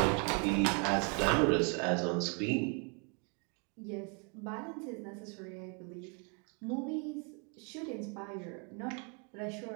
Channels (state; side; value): quieter; left; 36.3 dB